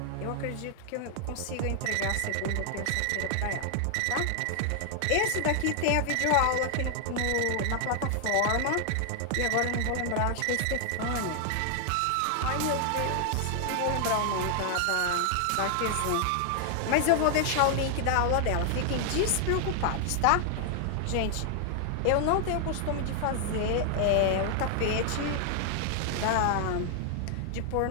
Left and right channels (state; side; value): different; both; correlation 0.00